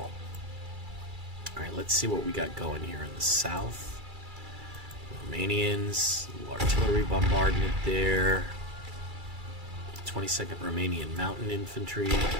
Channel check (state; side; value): late; left; 2.3 ms